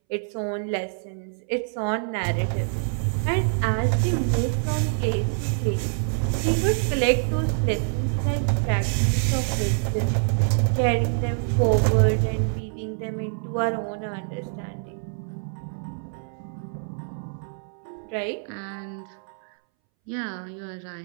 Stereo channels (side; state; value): left; silent; 61 dB below the other